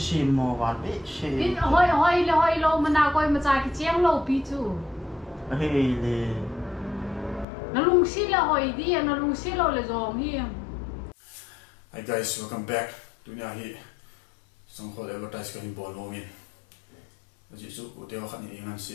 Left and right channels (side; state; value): right; drops out; at 7.5 s